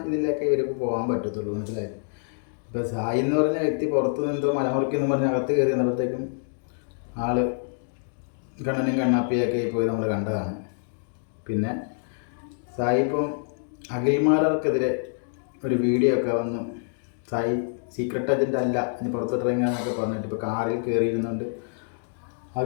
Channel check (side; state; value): right; silent; digital silence